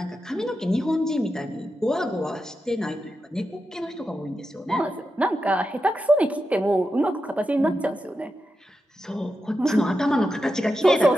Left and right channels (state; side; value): normal; both; correlation 0.89